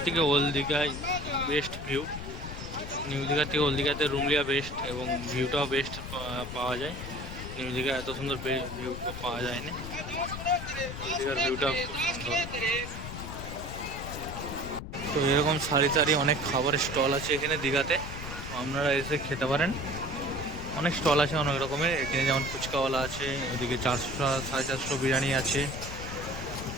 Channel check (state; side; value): noise; left; rumble, 8 dB below the sound